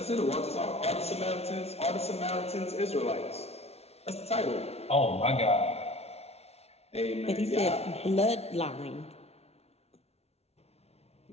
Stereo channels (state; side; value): late; right; 0.31 ms